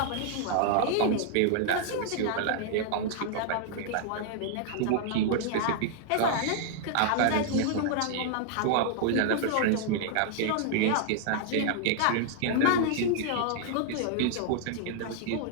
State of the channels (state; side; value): different; both; correlation -0.01